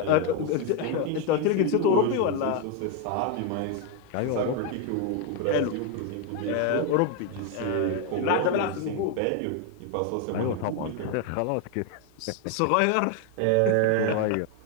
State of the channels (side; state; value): both; different; correlation 0.01